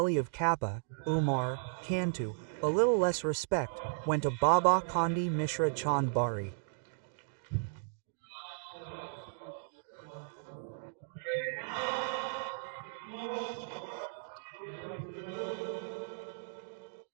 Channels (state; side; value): silent; left; digital silence